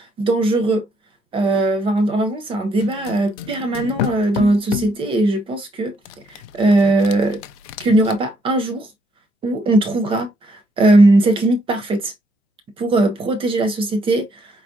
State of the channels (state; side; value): normal; both; correlation 0.72